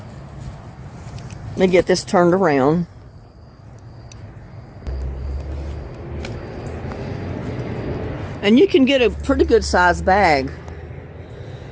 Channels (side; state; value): both; identical; correlation 1.00